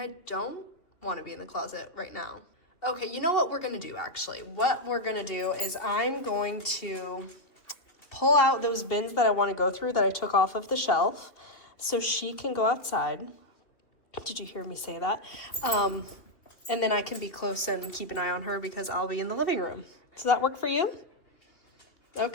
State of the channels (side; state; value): right; late; 2.9 ms